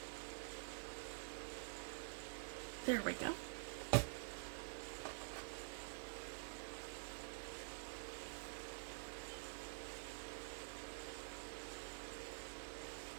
There we go.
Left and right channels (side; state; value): left; silent; digital silence